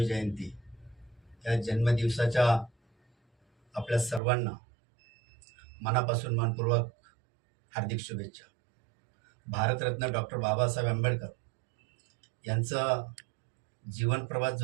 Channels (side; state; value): left; drops out; at 4.2 s